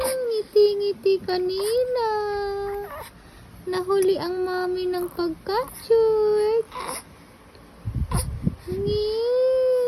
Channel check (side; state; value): both; identical; correlation 1.00